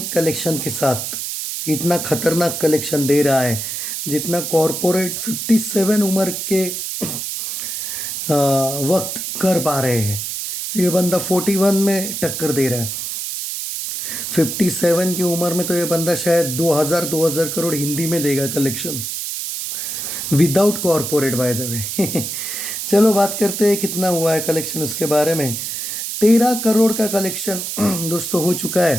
कलेक्शन के साथ इतना खतरनाक कलेक्शन दे रहा है जितना कॉरपोरेट 57 उम्र के वक्त कर पा रहे हैं। ये बंदा 41 में टक्कर दे रहा है। 57 की उम्र में तो ये बंदा शायद 2000 करोड़ हिंदी में देगा collection without corporate by the way. चलो बात करते हैं कितना हुआ है कलेक्शन उसके बारे में। 13 करोड़ का कलेक्शन दोस्तों हो चुका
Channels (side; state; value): right; noise; hiss, 4 dB below the sound